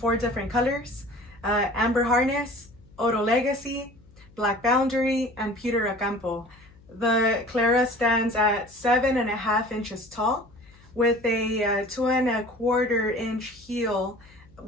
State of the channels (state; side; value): noise; left; hum, 26 dB below the sound